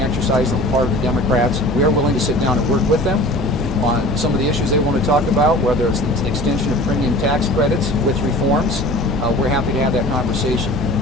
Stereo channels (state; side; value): noise; left; hum, 13 dB below the sound